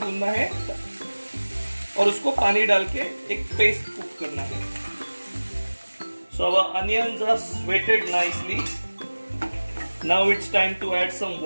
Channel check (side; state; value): both; inverted; correlation -1.00